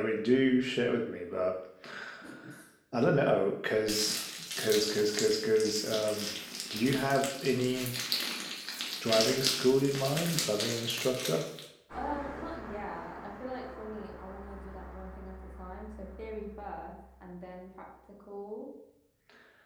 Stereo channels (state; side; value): identical; both; correlation 1.00